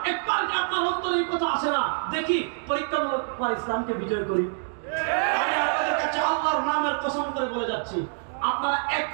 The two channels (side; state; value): left; silent; 61 dB below the other